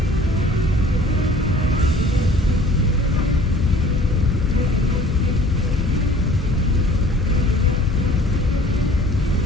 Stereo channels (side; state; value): both; normal; correlation 0.50